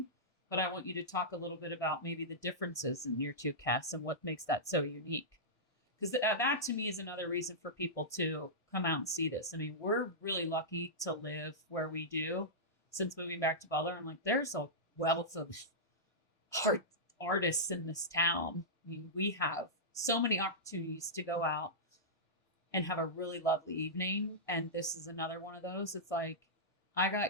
But I want you to talk a little bit about maybe the differences in your two casts and what makes that so unique. Because that to me is another reason for people to come out and see this. I mean, we're really lucky to live where we do since moving back to Butler. I'm like, there's a wealth of artists in this town. I mean, we have so many opportunities to go out and have a really lovely evening. And this is another one of those. It's like, I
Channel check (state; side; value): late; right; 1.6 ms